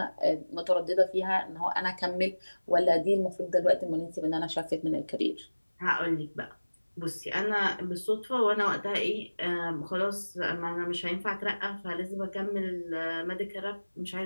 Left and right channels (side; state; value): both; inverted; correlation -1.00